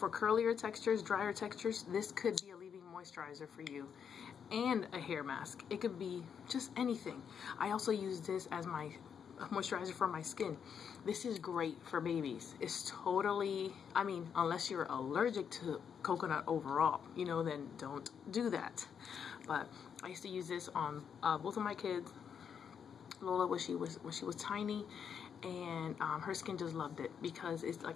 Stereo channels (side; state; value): right; quieter; 7.4 dB